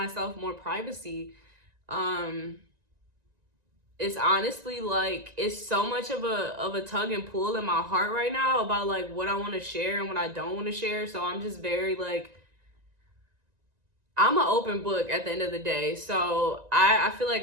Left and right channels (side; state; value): left; late; 1.9 ms